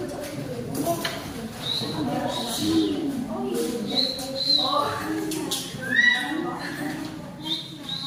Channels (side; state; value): both; identical; correlation 1.00